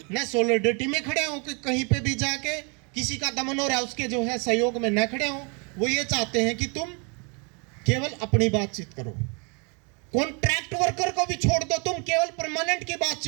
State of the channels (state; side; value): quieter; left; 34.3 dB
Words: न सॉलिडरिटी में खड़े हो कि कहीं पे भी जाके किसी का दमन हो रहा है उसके जो है सहयोग में न खड़े हो। वो ये चाहते हैं कि तुम केवल अपनी बातचीत करो, कॉन्ट्रैक्ट वर्कर को भी छोड़ दो, तुम केवल परमानेंट की